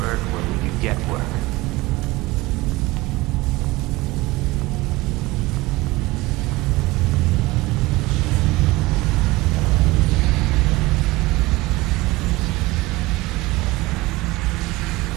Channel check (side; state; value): left; quieter; 20.4 dB